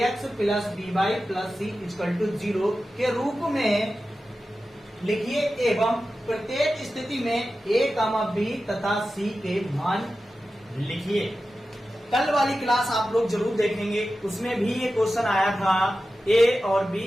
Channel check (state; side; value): normal; both; correlation 0.93